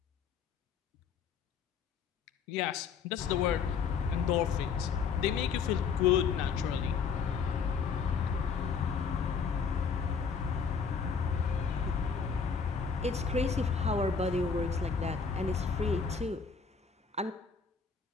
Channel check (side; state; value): right; quieter; 5.9 dB